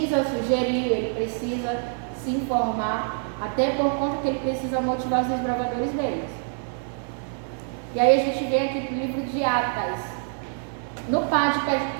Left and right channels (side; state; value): left; silent; digital silence